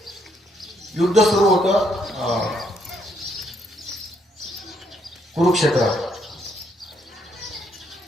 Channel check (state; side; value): normal; both; correlation 0.73